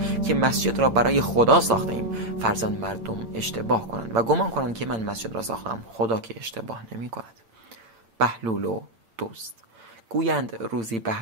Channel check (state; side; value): late; left; 8.7 ms